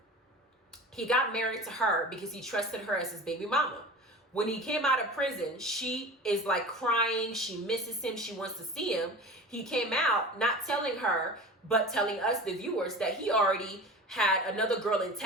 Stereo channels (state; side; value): normal; both; correlation 0.35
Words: He got married to her because he trusted her as his baby mama. When he came out of prison, she is like crying. She misses him. She wants to see him. He came out not telling her, but telling us, the viewers, that he already had another girl in